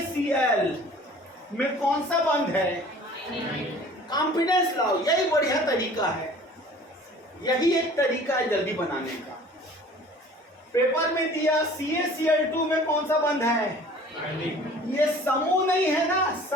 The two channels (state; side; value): normal; both; correlation 0.48